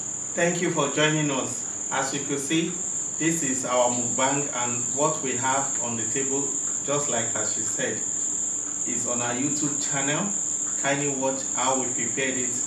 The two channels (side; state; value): both; identical; correlation 1.00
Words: thank you for joining us. As you can see, this is our mukbang, and what we have on the table, just like as she said, is on our YouTube channel. Kindly watch how we prepared it.